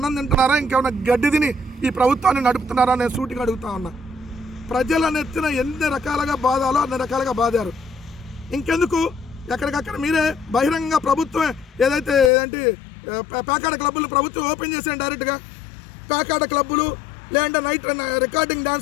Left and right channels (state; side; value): drops out; right; at 12.3 s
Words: తింటున్నారా, ఇంకేమన్నా గడ్డి తిని ఈ ప్రభుత్వాన్ని నడుపుతున్నారా? నేను సూటిగా అడుగుతా ఉన్నా. ప్రజల నెత్తిన ఎన్ని రకాలుగా బాధాలో అన్ని రకాలుగా బాధారు. ఇంకెందుకు ఎక్కడికక్కడ మీరే బహిరంగ ప్రభుత్వం ఏదైతే పేకాట క్లబ్బులు ప్రభుత్వం ఓపెన్ చేసాను డైరెక్ట్గా. పేకాట క్లబ్బులు లేదంటే నైట్ రికార్డింగ్